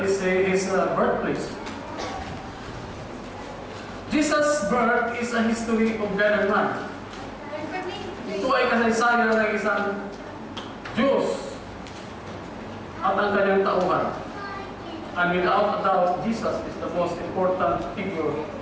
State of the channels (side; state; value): both; identical; correlation 1.00